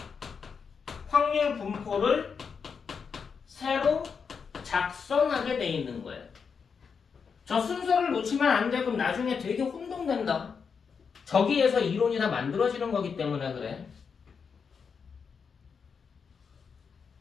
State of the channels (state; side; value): quieter; right; 6.0 dB